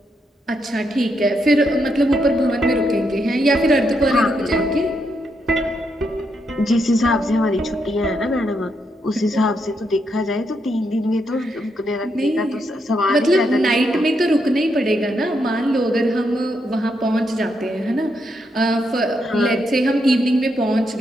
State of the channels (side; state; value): both; normal; correlation 0.80